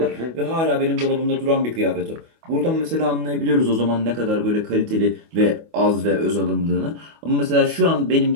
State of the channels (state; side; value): late; left; 25 ms